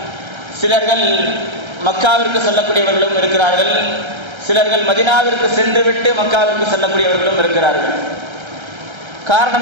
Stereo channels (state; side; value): late; left; 1.3 ms